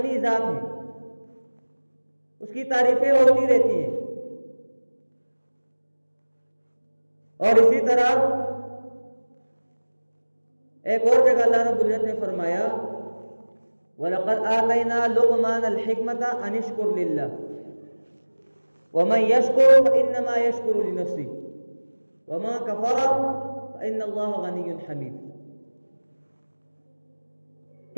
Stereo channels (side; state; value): both; inverted; correlation -1.00